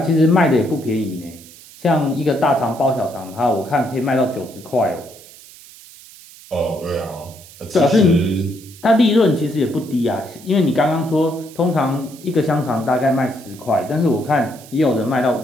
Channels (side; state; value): right; noise; hiss, 21 dB below the sound